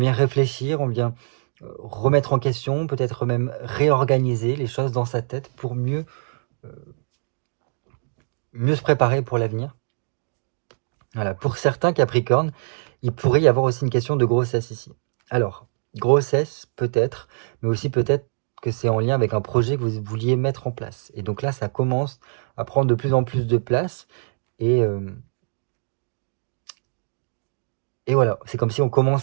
réfléchir, on vient remettre en question, peut-être même réorganiser les choses dans sa tête pour mieux se préparer pour l'avenir. Voilà, pour certains Capricornes, il pourrait y avoir aussi une question de grossesse ici. Alors, grossesse peut-être, mais aussi peut-être que c'est en lien avec un projet que vous vouliez mettre en place. Et donc là, ça commence à prendre de plus en plus de place, et voilà, c'est comme si on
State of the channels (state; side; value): silent; left; digital silence